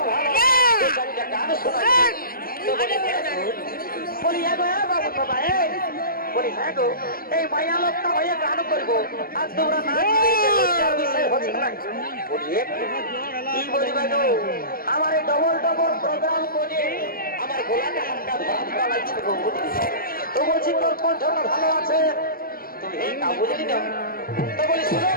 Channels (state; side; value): late; right; 0.42 ms